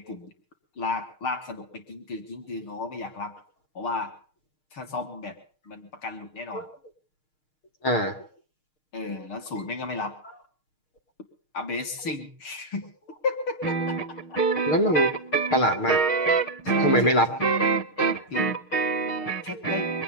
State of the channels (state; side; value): late; right; 6.5 ms